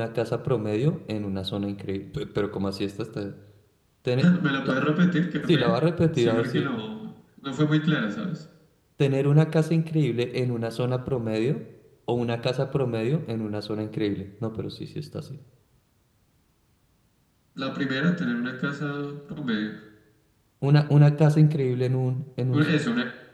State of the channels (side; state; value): both; identical; correlation 1.00